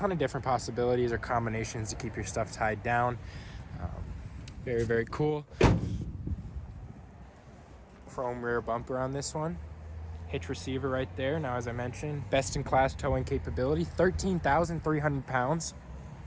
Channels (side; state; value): both; identical; correlation 1.00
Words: of different possibilities or combinations to keep your stuff tied down. Very, very cool. Chrome rear bumper on this one. Hitch receiver right there. Now, as I mentioned, best-in-class towing capability, 13,300 pounds.